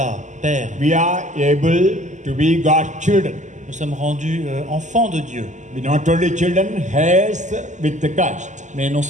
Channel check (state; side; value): late; left; 0.35 ms